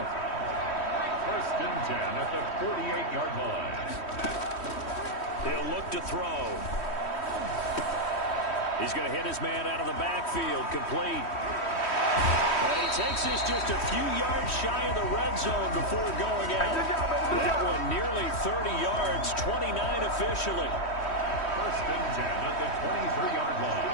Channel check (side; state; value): right; late; 3.1 ms